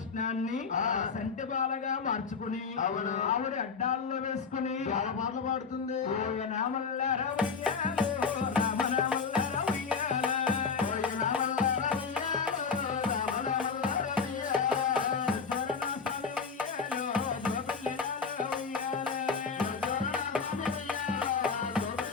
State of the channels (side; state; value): right; quieter; 5.4 dB